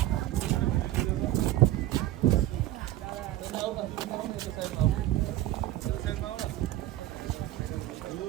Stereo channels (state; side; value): quieter; left; 14.9 dB